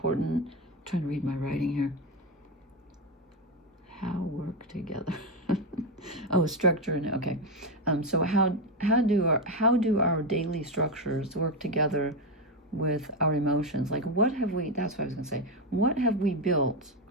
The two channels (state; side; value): normal; both; correlation 0.09